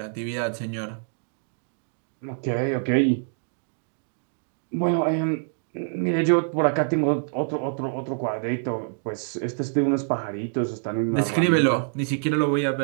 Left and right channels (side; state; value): left; silent; digital silence